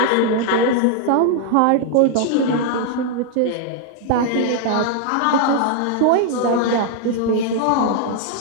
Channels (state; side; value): different; both; correlation 0.00